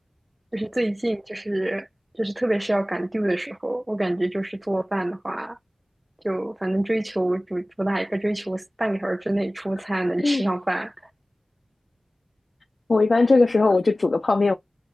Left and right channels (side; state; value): both; normal; correlation 0.97